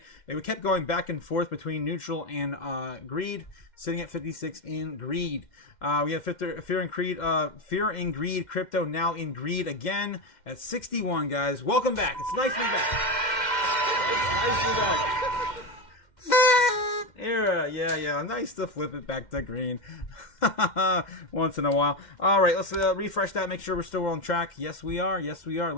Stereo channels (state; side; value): late; right; 2.1 ms